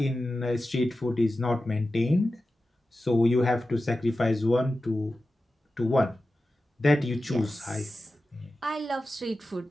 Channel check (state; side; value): normal; both; correlation 0.93